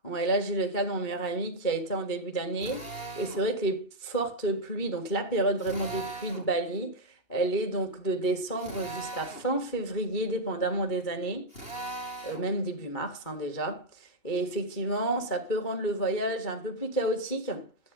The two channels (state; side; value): late; right; 2.3 ms